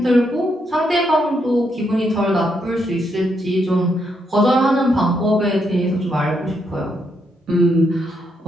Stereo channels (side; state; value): both; normal; correlation 0.78